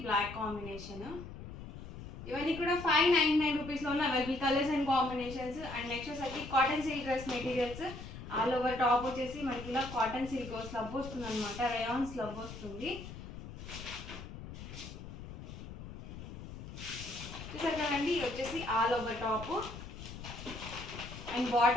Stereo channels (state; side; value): noise; left; rumble, 11 dB below the sound